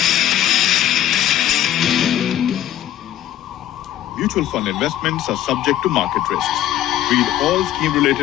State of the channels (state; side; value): quieter; right; 12.3 dB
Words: Mutual fund investments are subject to market risks. Read all